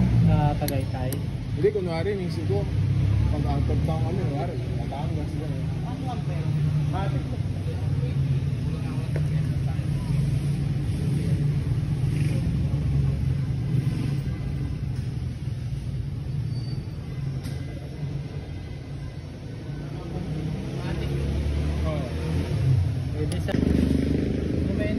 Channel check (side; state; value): both; identical; correlation 1.00